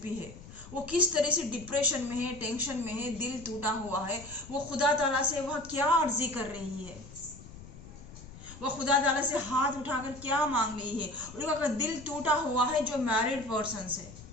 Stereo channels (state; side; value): noise; left; rumble, 16 dB below the sound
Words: भी है, वो किस तरह से डिप्रेशन में है, टेंशन में है, दिल टूटा हुआ है, वो खुदा ताला से वह क्या अर्जी कर रही है, वो खुदा ताला से हाथ उठाकर क्या मांग रही है। उनका दिल टूटा हुआ है जो मैरिड पर्सन से,